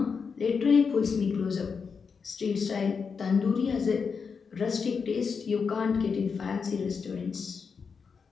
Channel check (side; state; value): right; quieter; 5.6 dB